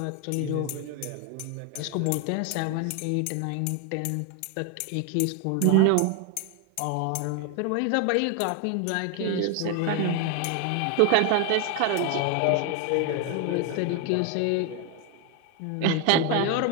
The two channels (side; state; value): both; different; correlation 0.01